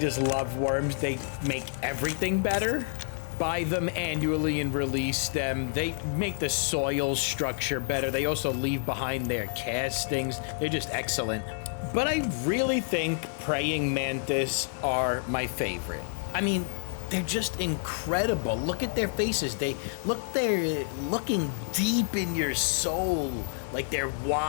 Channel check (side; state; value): right; silent; digital silence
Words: love worms. They make everything better. Buy them annually and release them. They make the soil structure better. They also leave behind their castings. They're just excellent. But I really think praying mantis are my favorite. I mean, they're just incredible. Look at their faces. They're looking deep in your soul. Like they're